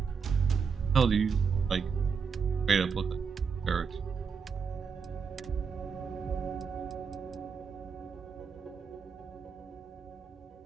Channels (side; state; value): left; quieter; 5.8 dB